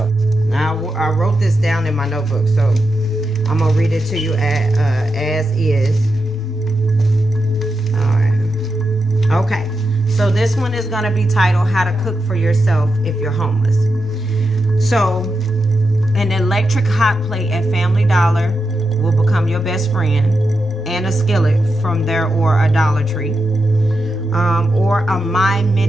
Now, I wrote this down in my notebook, so I'm going to read it to you as is. All right. Okay, so this one is going to be titled How to Cook for Yourself If You're Homeless. So, an electric hot plate at Family Dollar will become your best friend, and a skillet from there or a Dollar Tree, or a My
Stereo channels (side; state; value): both; normal; correlation 0.87